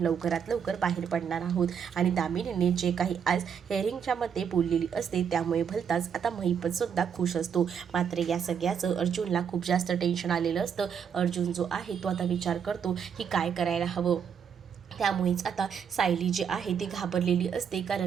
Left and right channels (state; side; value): quieter; left; 7.5 dB